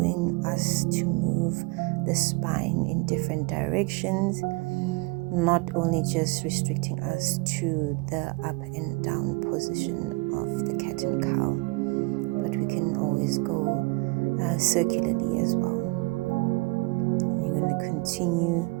us to move the spine in different directions, not only just restricting us to the up and down position of the cat and cow, but we can always go circularly as well. You're going to continue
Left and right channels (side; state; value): left; quieter; 25.9 dB